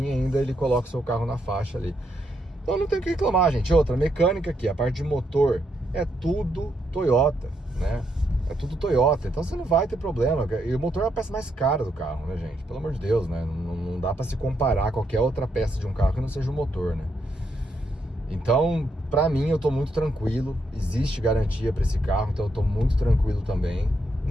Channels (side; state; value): both; normal; correlation 0.78